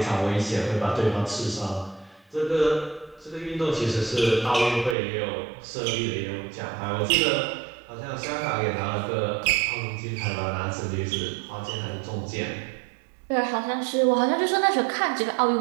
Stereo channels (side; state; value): left; drops out; at 5.0 s